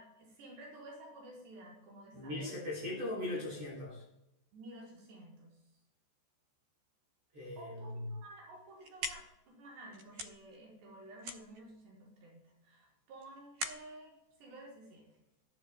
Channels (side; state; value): left; late; 14 ms